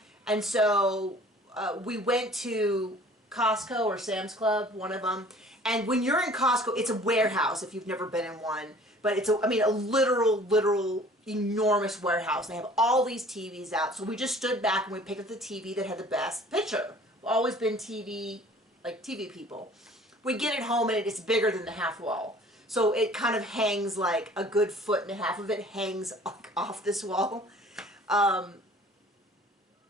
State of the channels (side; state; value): both; normal; correlation 0.50